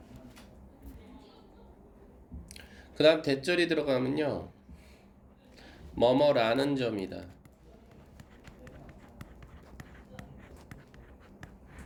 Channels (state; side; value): identical; both; correlation 1.00